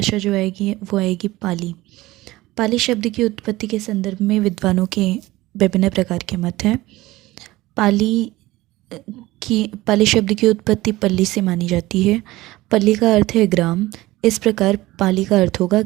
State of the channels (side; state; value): left; quieter; 18.4 dB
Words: जो आएगी वो आएगी पाली। पाली शब्द की उत्पत्ति के संदर्भ में विद्वानों के विभिन्न प्रकार के मत हैं। पाली शब्द की उत्पत्ति पल्ली से मानी जाती है। पल्ली का अर्थ है ग्राम, इस प्रकार पाली का अर्थ होगा